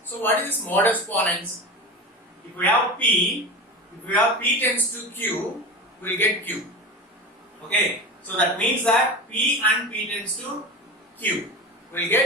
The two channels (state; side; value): normal; both; correlation 0.28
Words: So what is this modus ponens? If we have P tends to Q, we'll get Q. Okay. So that means that P and P tends to Q. We'll